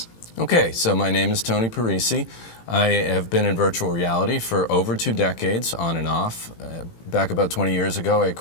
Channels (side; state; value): right; late; 18 ms